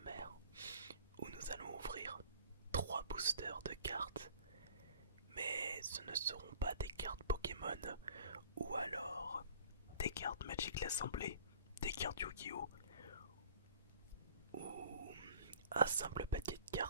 où nous allons ouvrir 3 boosters de cartes. Mais ce ne seront pas des cartes Pokémon ou alors des cartes Magic l'Assemblée, des cartes Yu-Gi-Oh! Ou un simple paquet de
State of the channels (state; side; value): inverted; both; correlation -0.49